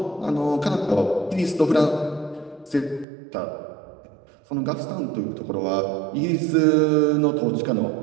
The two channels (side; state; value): left; drops out; at 3.1 s